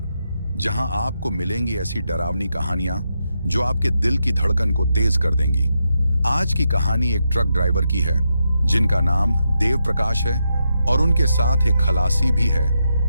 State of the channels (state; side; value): inverted; both; correlation -0.84